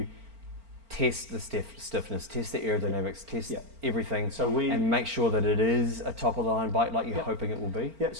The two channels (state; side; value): late; left; 4.4 ms